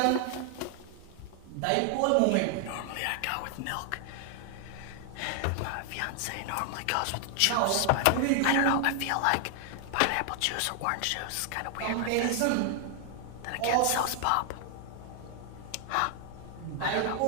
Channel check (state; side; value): different; both; correlation 0.00